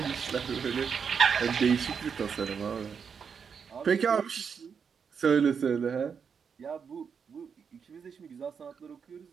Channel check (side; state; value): left; quieter; 6.5 dB